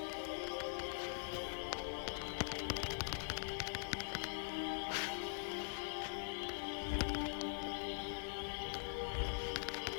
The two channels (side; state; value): right; silent; digital silence